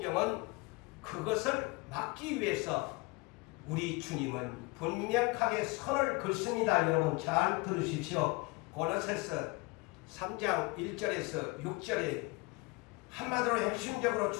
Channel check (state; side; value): quieter; right; 25.7 dB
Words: 그것을 막기 위해서 우리 주님은 분명하게 선을 긋습니다. 여러분 잘 들으십시오. 고린도서 3장 1절에서 6절에 한마디로 핵심적으로